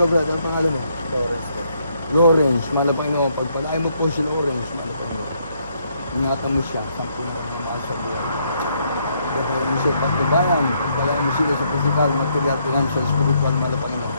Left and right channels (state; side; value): inverted; both; correlation -0.72